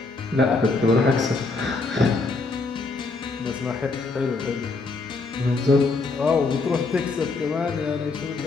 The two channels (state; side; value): quieter; right; 3.8 dB